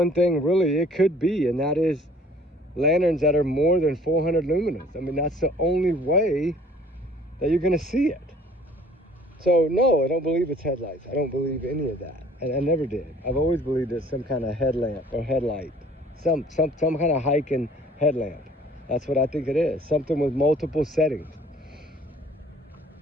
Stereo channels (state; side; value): normal; both; correlation 0.54